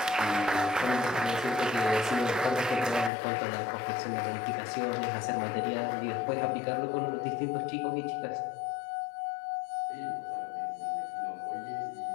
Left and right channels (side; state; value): right; drops out; at 3.1 s